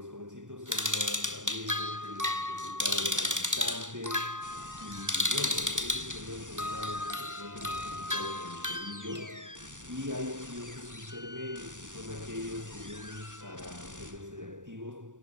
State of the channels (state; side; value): late; left; 0.86 ms